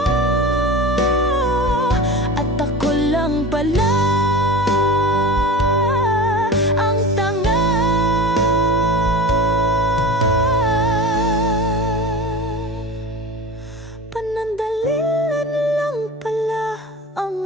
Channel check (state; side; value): normal; both; correlation 0.32